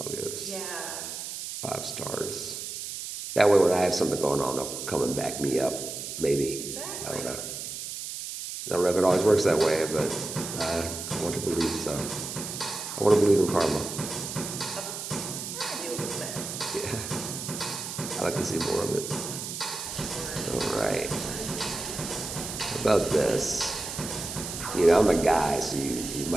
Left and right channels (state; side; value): noise; right; hiss, 7 dB below the sound